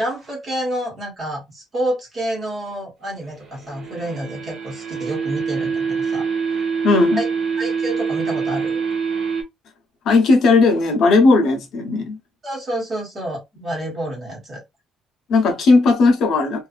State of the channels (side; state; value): both; normal; correlation 0.75